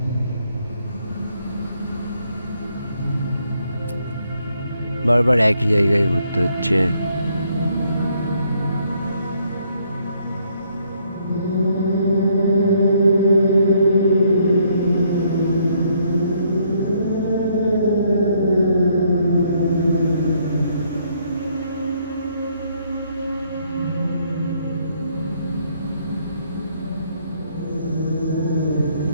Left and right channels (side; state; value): both; inverted; correlation -0.70